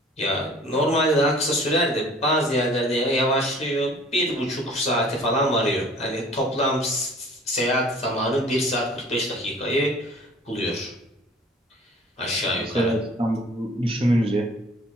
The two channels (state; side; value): normal; both; correlation 0.50